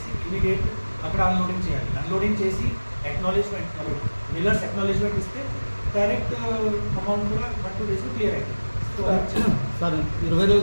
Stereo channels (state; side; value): inverted; both; correlation -1.00